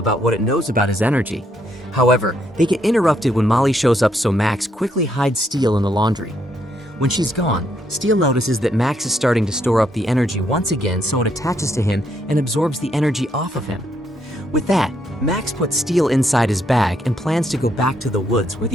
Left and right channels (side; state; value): both; normal; correlation 0.74